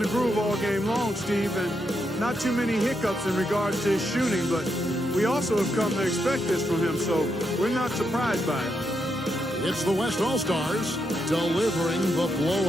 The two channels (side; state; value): both; normal; correlation 0.81